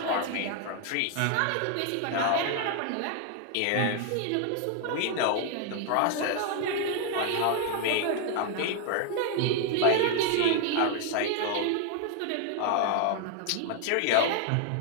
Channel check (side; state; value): both; different; correlation 0.00